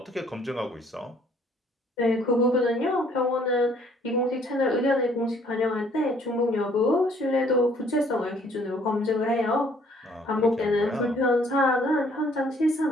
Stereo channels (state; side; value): normal; both; correlation 0.61